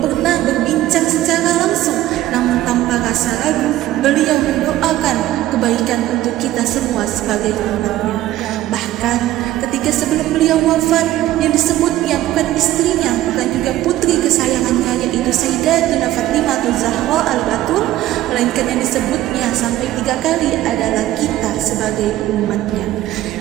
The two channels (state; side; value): quieter; left; 14.6 dB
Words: pernah berbincang secara langsung, namun tanpa rasa ragu beliau mendoakan kebaikan untuk kita semua sebagai umatnya. Bahkan ketika sebelum beliau wafat, yang disebutnya bukan istrinya, bukan juga putri kesayangannya, yaitu Sayyidatuna Fatimah Zahra Al-Batul, melainkan yang disebutnya sampai 3 kali adalah kita sebagai umatnya.